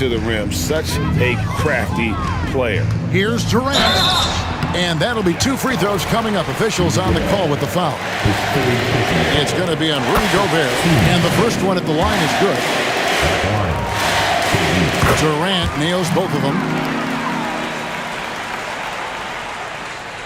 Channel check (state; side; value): identical; both; correlation 1.00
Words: the rim. Such a crafty player. Here's Durant. And that'll be 2 free throws coming up. Officials on the call with the foul. It's going to be on Rudy Gobert. And the first one at the line is good. Durant nails both of them.